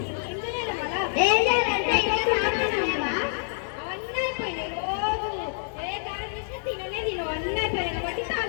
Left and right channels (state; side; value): silent; right; digital silence